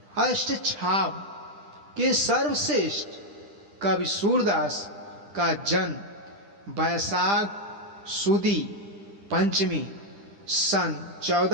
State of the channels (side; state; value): left; late; 10 ms